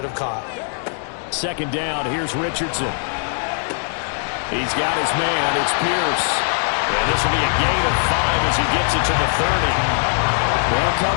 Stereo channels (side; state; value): right; silent; 57 dB below the other